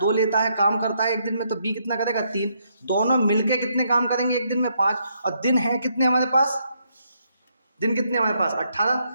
लेता है, काम करता है 1 दिन में, तो बी कितना करेगा 3, दोनों मिलके कितने काम करेंगे 1 दिन में, 5, और दिन है कितने हमारे पास, दिन कितने हमारे पास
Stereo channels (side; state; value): both; inverted; correlation -0.75